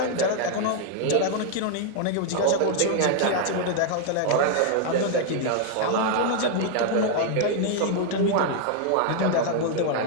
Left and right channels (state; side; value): different; both; correlation 0.00